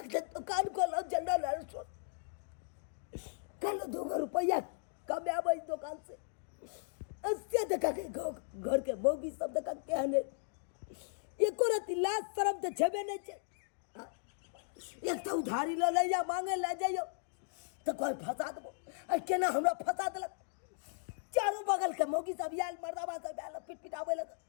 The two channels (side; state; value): right; silent; digital silence